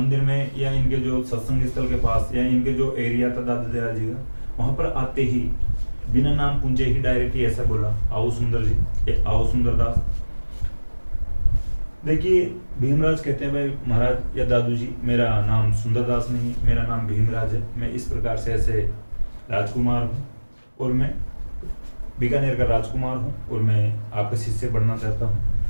में या इनके जो सत्संग स्थल के पास या इनके जो एरिया था दादू दयाल जी का, वहां पर आते ही बिना नाम पूछे ही डायरेक्ट ही ऐसा बोला, आओ सुंदर जी, ये आओ सुंदरदास। देखिए भीमराज कहते हैं भाई महाराज या दादू जी, मेरा नाम सुंदरदास नहीं, मेरा नाम भीमराज है, मैं इस प्रकार से ऐसे राजकुमार हूँ और मैं बीकानेर का राजकुमार हूँ और मैं आपका शिष्य बनना चाहता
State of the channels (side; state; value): both; inverted; correlation -1.00